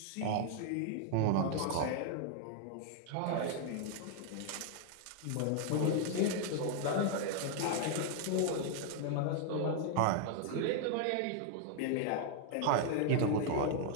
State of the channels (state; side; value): different; both; correlation 0.00